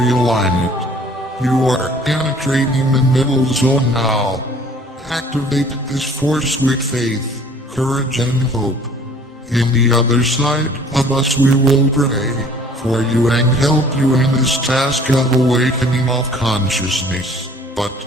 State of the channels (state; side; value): normal; both; correlation 0.53